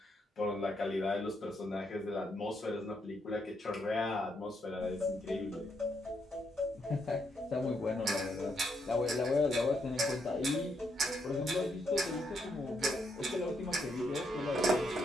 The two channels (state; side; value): normal; both; correlation 0.77